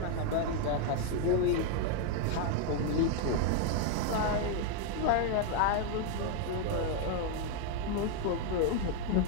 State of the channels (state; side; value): different; both; correlation 0.00